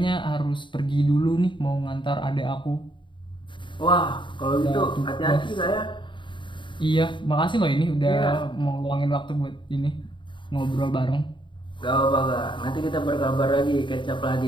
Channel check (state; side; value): late; right; 0.23 ms